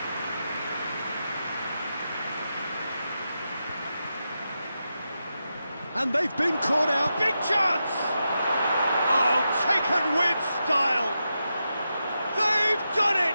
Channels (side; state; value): both; inverted; correlation -0.88